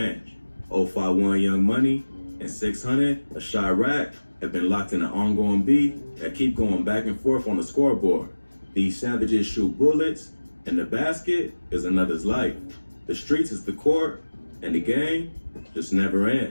051 Young Money and 600 a Chiraq have been locked in an ongoing beef that keep going back and forth on the scoreboard. These savages shoot bullets, and the basket is another's life. The streets is the court, and the game just never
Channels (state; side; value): inverted; both; correlation -1.00